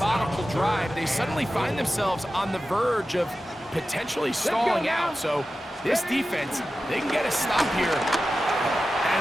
drive, they suddenly find themselves on the verge of potentially stalling out. So this defense, they can get a stop here.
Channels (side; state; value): both; normal; correlation 0.93